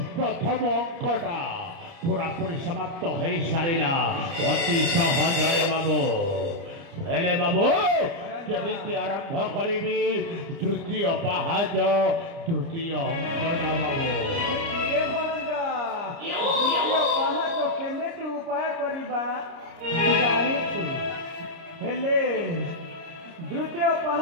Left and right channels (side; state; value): left; late; 30 ms